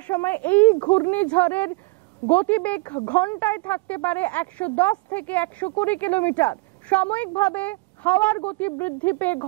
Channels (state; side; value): quieter; left; 25.9 dB